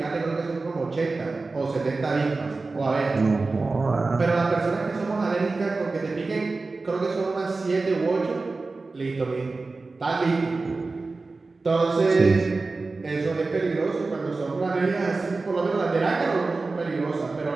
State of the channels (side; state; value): left; quieter; 3.7 dB